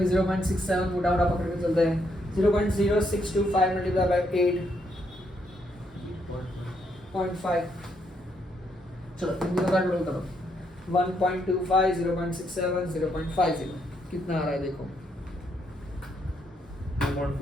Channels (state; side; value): normal; both; correlation 0.75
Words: 0.67 मोटा मोटा पकड़ के चलते हैं। 0.0625 मल्टीप्लाई बाय 8.5 चलो इन दोनों का टोटल करो 1.25 0.67 0.50 कितना आ रहा है देखो